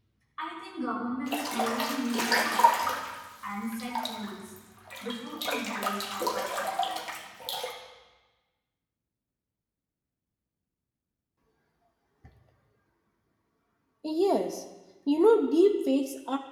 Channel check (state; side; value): identical; both; correlation 1.00